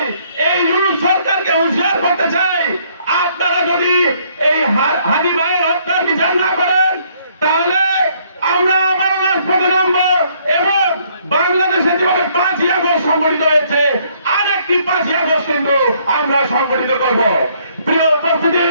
এই ইউনুস সরকারকে হুঁশিয়ার করতে চাই, আপনারা যদি এই হাদি ভাইয়ের হত্যার বিচার না করেন, তাহলে আমরা আবার রাজপথে নামবো এবং বাংলাদেশে যেভাবে 5ই আগস্ট সংগঠিত হয়েছে, আরেকটি 5ই আগস্ট কিন্তু আমরা সংগঠিত করব। প্রিয় উপস্থিতি,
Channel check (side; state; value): both; inverted; correlation -0.66